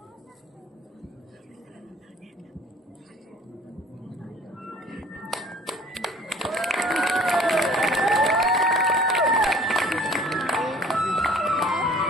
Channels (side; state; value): both; normal; correlation 0.50